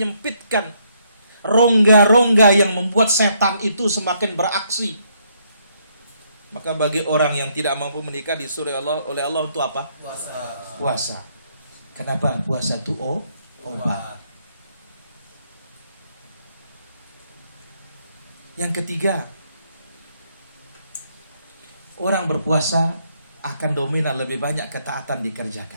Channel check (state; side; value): inverted; both; correlation -0.71